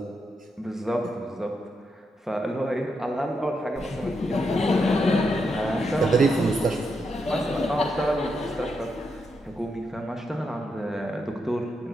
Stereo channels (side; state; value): both; normal; correlation 0.82